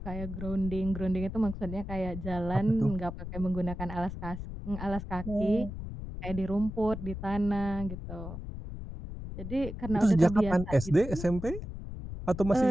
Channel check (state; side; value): noise; left; rumble, 8 dB below the sound